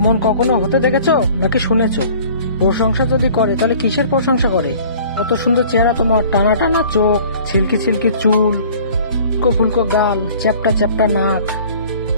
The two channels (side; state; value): both; inverted; correlation -0.49